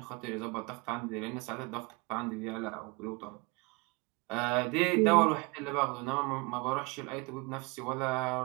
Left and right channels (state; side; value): quieter; left; 27.6 dB